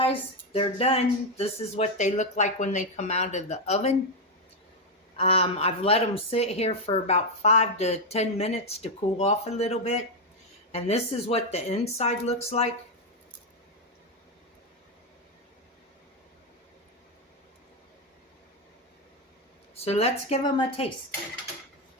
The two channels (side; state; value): both; normal; correlation 0.05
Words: they're done. This is what they look like when they come out of the oven. I've let them sit here for about 5 to 10 minutes to cool off a little bit. And this is what the inside looks like. So let's give them a taste.